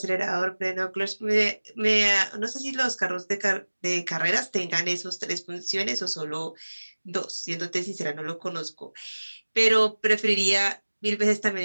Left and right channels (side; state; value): both; inverted; correlation -1.00